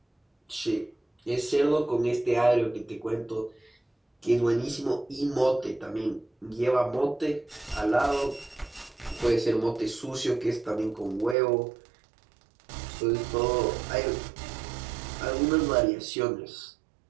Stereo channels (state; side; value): drops out; left; at 11.4 s